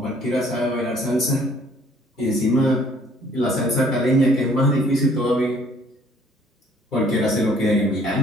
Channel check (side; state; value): both; normal; correlation 0.59